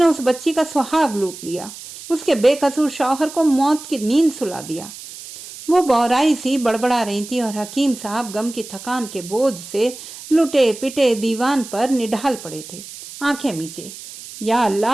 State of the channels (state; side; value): noise; right; hiss, 14 dB below the sound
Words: उस बच्ची का सुहाग लूट लिया, उसके बेकसूर शौहर को मौत की नींद सुला दिया। वो बौराई सी बड़बड़ा रही थी और हकीम साहब गम की थकान के बोझ से लुटे पिटे दीवान पर निढाल पड़े थे, आंखें मीचे। या